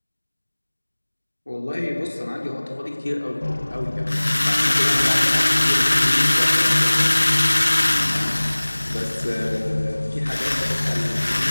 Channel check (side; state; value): both; inverted; correlation -1.00